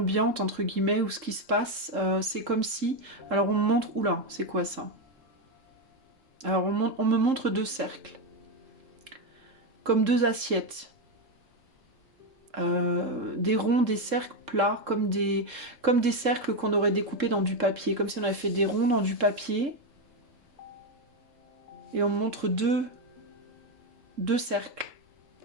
entre guillemets, où ce qui se passe, c'est comme si... Alors on me montre... Oula, c'est quoi ça? Alors on me montre 2 cercles, comme 2 assiettes. Des ronds, des cercles plats, comme des cercles qu'on aurait découpés dans du papier, comme si on avait fait des ronds dans du papier, et on me montre deux cercles.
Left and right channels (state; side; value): late; left; 3.7 ms